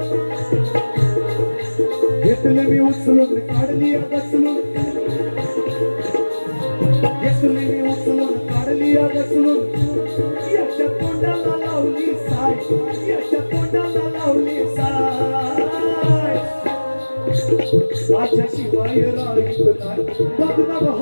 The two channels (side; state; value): both; inverted; correlation -1.00